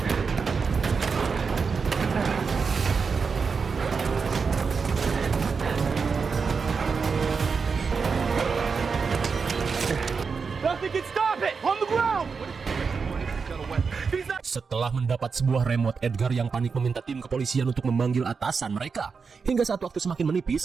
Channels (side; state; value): left; quieter; 5.3 dB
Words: Nothing can stop it! On the ground! Setelah mendapat sebuah remote, Edgar yang panik meminta tim kepolisian untuk memanggil atasan mereka. Hingga saat waktu semakin